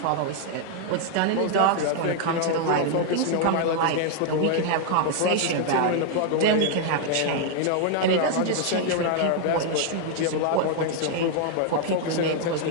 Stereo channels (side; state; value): both; different; correlation 0.00